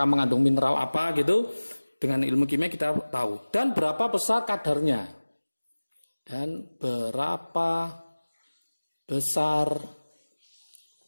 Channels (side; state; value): both; inverted; correlation -1.00